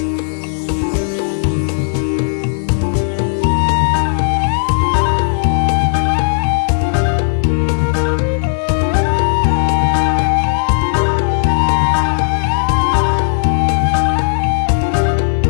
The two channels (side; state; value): right; silent; digital silence